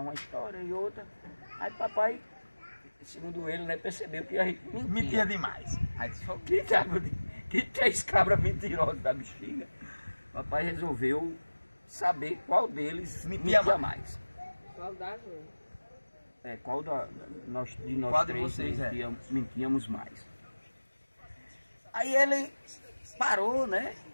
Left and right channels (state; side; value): inverted; both; correlation -1.00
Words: uma história e outra. Aí papai, segundo ele, né, percebeu que a gente mentia demais. Aí disse, que 3 cabras mentirosas da bexiga. Papai resolveu saber qual deles mentia mais. Qual das duas? Qual de nós qual três de vocês mentíamos mais. Aí ele parou, né,